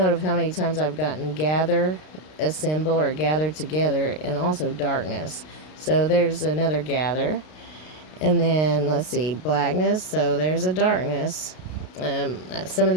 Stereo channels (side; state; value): right; late; 32 ms